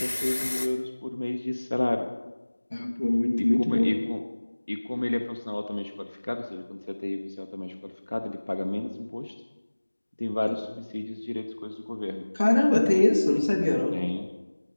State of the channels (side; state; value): both; inverted; correlation -1.00